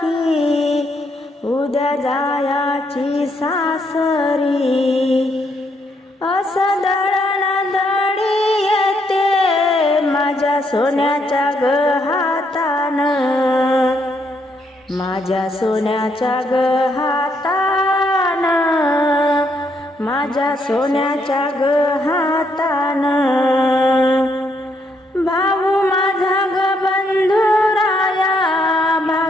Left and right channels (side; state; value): both; normal; correlation 0.74